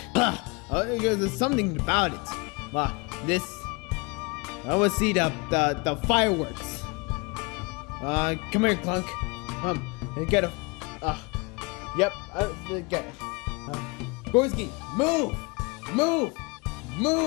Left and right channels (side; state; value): right; quieter; 28.6 dB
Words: There's something about it. This. I want to see the fireworks. Come here, Clunk. And get a. Yep. Get it. Gorski, move, move,